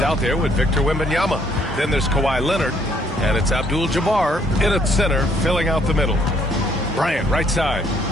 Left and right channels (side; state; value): both; normal; correlation 0.67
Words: out there with Victor Wembanyama. Then there's Kawhi Leonard, and it's Abdul-Jabbar in at center, filling out the middle. Bryant, right side.